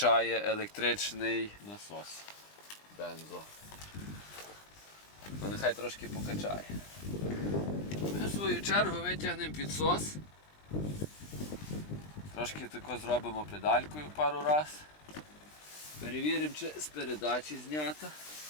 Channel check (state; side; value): late; right; 20 ms